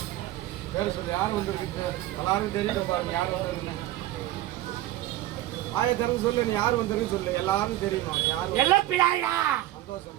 பேர் சொல்லு, யார் வந்துருக்கு? எல்லாருக்கும் தெரியல பாருங்க, யார் வந்துருக்குன்னு. ஆய திறந்து சொல்லு, நீ யார் வந்துருக்கு சொல்லு, எல்லாரும் தெரியணும். யார்?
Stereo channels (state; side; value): quieter; left; 15.1 dB